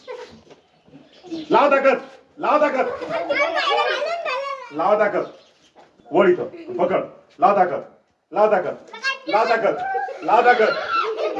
लाव ताकद. लाव ताकद. लाव ताकद. वळ इथं. पकड. लाव ताकद. लाव ताकद. लाव ताकद. लाव ताकद.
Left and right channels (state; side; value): identical; both; correlation 1.00